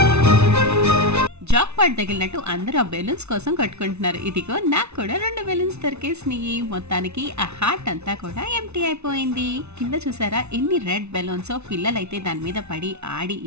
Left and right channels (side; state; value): left; late; 0.81 ms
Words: జాక్ పాట్ తగిలినట్టు అందరూ ఆ బెలూన్స్ కోసం కట్టుకుంటున్నారు. ఇదిగో నాకు కూడా 2 బెలూన్స్ దొరికేసినాయి. మొత్తానికి ఆ హార్ట్ అంతా కూడా ఎంప్టీ అయిపోయింది. కింద చూసారా ఎన్ని రెడ్ బెలూన్స్. పిల్లలైతే దాని మీద పడి ఆడి